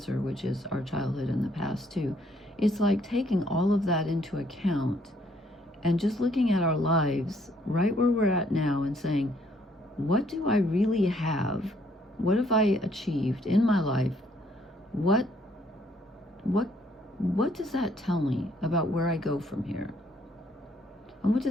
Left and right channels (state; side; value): normal; both; correlation 0.67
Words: which is our childhood and the past too. It's like taking all of that into account and just looking at our lives right where we're at now and saying, what do I really have? What have I achieved in my life? What does that tell me about where I go from here? And what